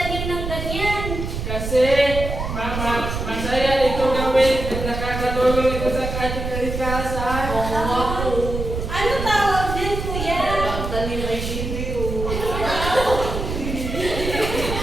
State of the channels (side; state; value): right; noise; rumble, 5 dB below the sound